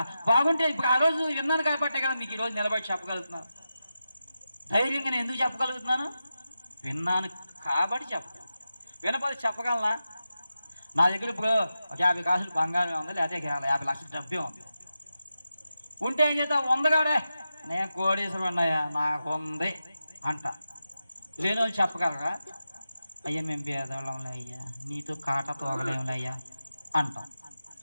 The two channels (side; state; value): both; inverted; correlation -0.91